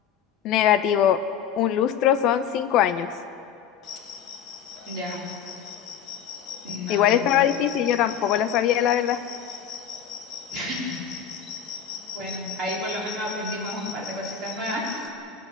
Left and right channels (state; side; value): quieter; right; 8.3 dB